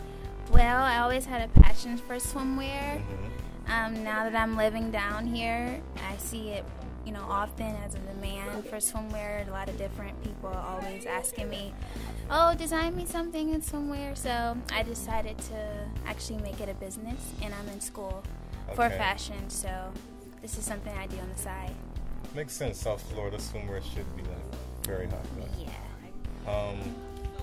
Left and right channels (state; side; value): identical; both; correlation 1.00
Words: Well, I always had a passion for swimwear. Mm-hmm. Now that I'm living down here, I see it, often as a demand for swimwear. A lot of different people are always asking me, "Oh, design me something in swimwear." So I decided to actually make it a business, and I'm in school for fashion. So this is something I do on the side. Makes sense. South Florida swimwear should be very hot. Yeah.